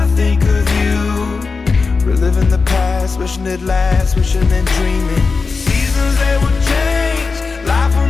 I think of you, reliving the past, wishing it lasts, wishing and dreaming. Seasons, they will change, life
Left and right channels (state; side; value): quieter; right; 4.5 dB